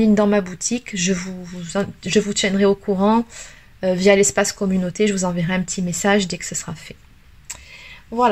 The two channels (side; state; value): both; identical; correlation 1.00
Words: dans ma boutique. Je vous tiendrai au courant via l'espace communauté. Je vous enverrai un petit message dès que ce sera fait.